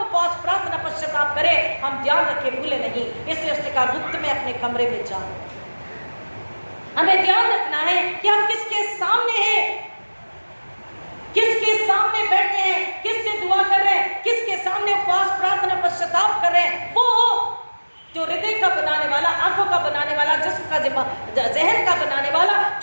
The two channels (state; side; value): inverted; both; correlation -1.00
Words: प्रार्थना, पश्चाताप करें, हम ध्यान रखें, भूले नहीं। इसलिए उसने कहा गुप्त में अपने कमरे में जाओ। हमें ध्यान रखना है कि हम किसके सामने हैं, किसके सामने बैठे हैं, किससे दुआ कर रहे हैं, किसके सामने उपवास, प्रार्थना, पश्चाताप कर रहे हैं। वो जो हृदय का बनाने वाला, आंखों का बनाने वाला, जिस्म का, जहन का बनाने वाला,